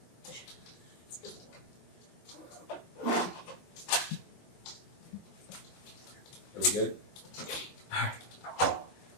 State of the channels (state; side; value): late; right; 21 ms